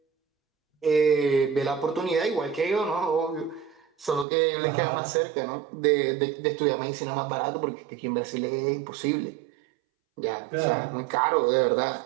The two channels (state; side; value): drops out; left; at 4.2 s